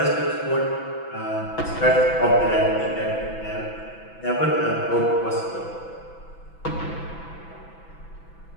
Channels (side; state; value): right; late; 6.0 ms